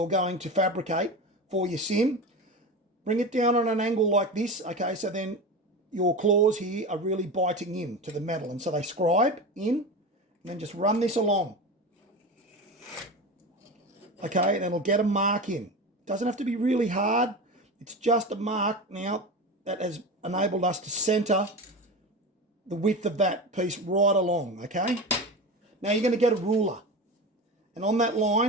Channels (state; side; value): normal; both; correlation 0.26